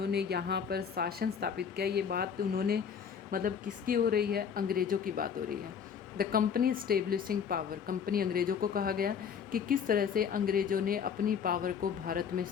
यहाँ पर शासन स्थापित किया। ये बात उन्होंने मतलब किसकी हो रही है? अंग्रेज़ों की बात हो रही है। The company establishing power, company अंग्रेज़ों को कहा गया कि किस तरह से अंग्रेज़ों ने अपनी पावर को भारत में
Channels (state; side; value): quieter; right; 7.1 dB